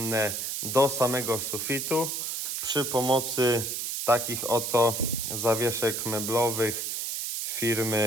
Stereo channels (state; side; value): noise; right; hiss, 3 dB below the sound